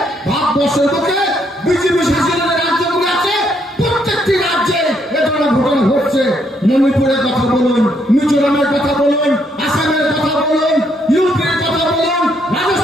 ভারতবর্ষের বুকে বিজেপি শাসিত রাজ্যগুলো আছে প্রত্যেকটি রাজ্যে এ ধরনের ঘটনা ঘটছে। মণিপুরের কথা বলুন, মিজোরামের কথা বলুন, আসামের কথা বলুন, ইউপির কথা বলুন,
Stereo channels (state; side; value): normal; both; correlation 0.72